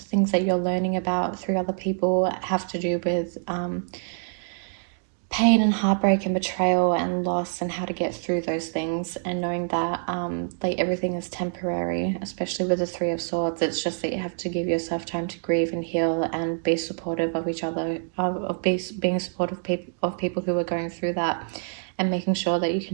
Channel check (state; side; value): silent; left; 61 dB below the other